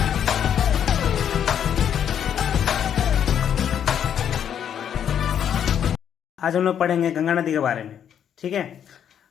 आज हम लोग पढ़ेंगे गंगा नदी के बारे में। ठीक है।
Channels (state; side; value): quieter; right; 9.0 dB